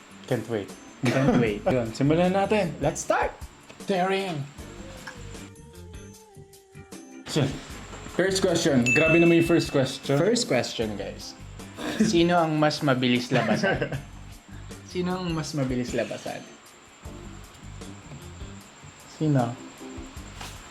Can't wait. Can't wait. Yun, simulan natin. Let's start! Daring! So, first question. Grabe naman yung first question. First question, guys. Sino ang mas mabilis labasan? Sino ang mas mabilis labasan? Sino?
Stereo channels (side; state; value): both; identical; correlation 1.00